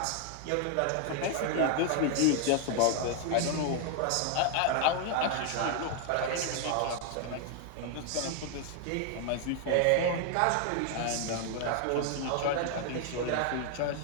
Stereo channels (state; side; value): different; both; correlation 0.00